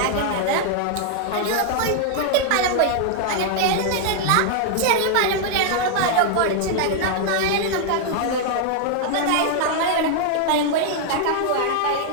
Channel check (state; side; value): different; both; correlation 0.00